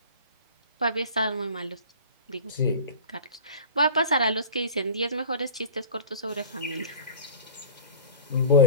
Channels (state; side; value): inverted; both; correlation -0.39